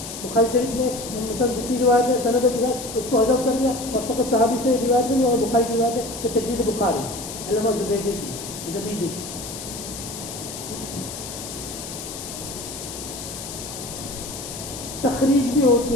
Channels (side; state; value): left; noise; hiss, 10 dB below the sound